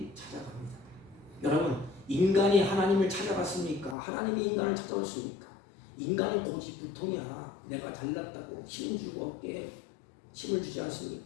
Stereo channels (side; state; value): right; drops out; at 4.0 s